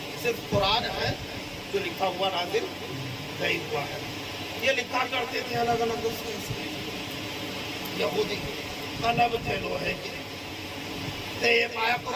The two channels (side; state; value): both; identical; correlation 1.00